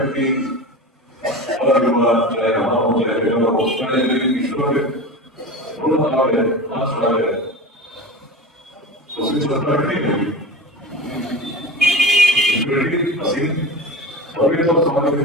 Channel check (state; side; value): normal; both; correlation 0.30